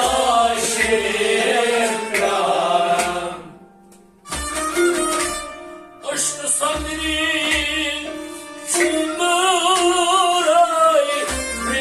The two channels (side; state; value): both; identical; correlation 1.00